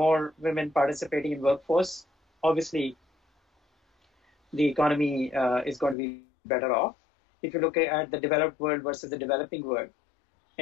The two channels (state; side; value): drops out; right; at 6.0 s